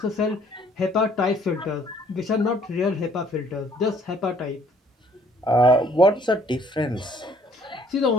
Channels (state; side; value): normal; both; correlation 0.60